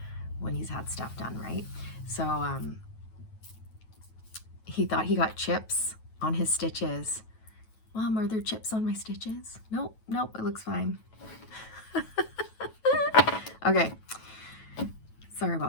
when he's had stuff done, right? So he thought he got chips on his stitches. Mom, are there chips on my stitches? Nope, it looks fine. Okay, sorry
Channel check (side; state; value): right; late; 9.2 ms